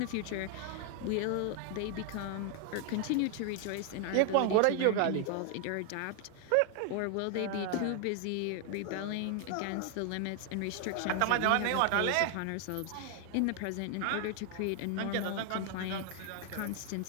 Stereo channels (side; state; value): both; different; correlation 0.00